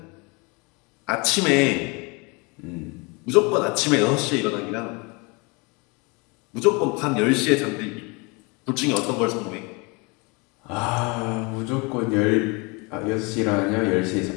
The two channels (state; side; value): quieter; right; 28.9 dB